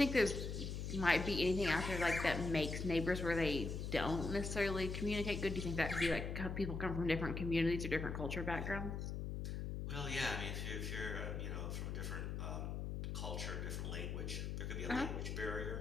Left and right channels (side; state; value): left; noise; hum, 3 dB below the sound